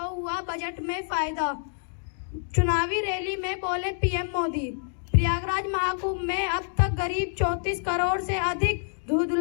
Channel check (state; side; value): silent; right; digital silence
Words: हुआ बजट में फायदा। चुनावी रैली में बोले पीएम मोदी। प्रयागराज महाकुंभ में अब तक करीब 34 करोड़ से अधिक